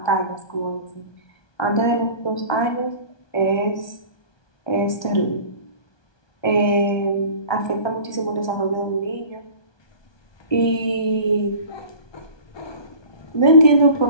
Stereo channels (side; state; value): right; late; 1.2 ms